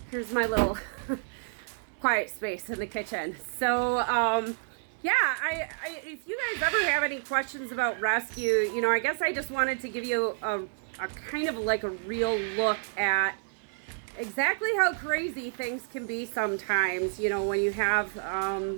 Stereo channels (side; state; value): left; silent; digital silence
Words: here's my little quiet space in the kitchen. So, yeah, if you guys ever have any questions about rescue, you know, I guess I just wanted to give you a kind of like a real look at exactly how crazy things can be sometimes, you know, when you have,